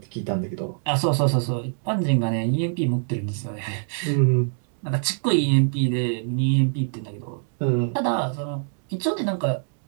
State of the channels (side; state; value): left; silent; digital silence